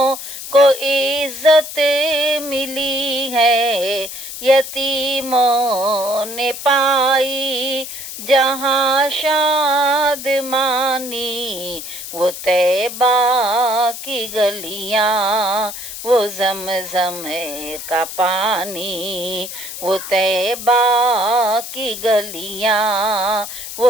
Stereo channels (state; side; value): noise; left; hiss, 9 dB below the sound